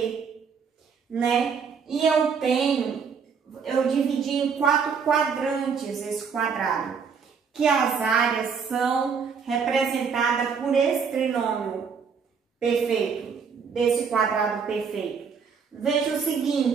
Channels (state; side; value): quieter; left; 6.1 dB